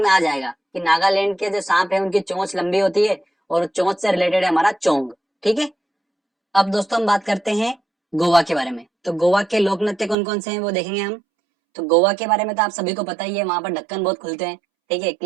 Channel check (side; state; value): left; drops out; at 10.2 s